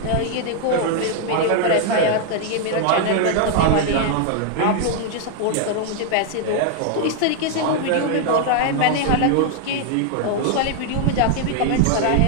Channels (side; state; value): both; different; correlation 0.00